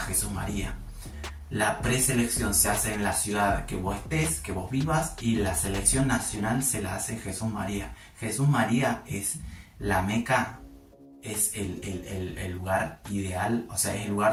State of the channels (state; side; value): identical; both; correlation 1.00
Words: Jesús María. La preselección se hace en la ciudad que vos estés, que vos vivas, y la selección nacional se la hace en Jesús María. Jesús María es la meca, es el lugar ideal, o sea, es el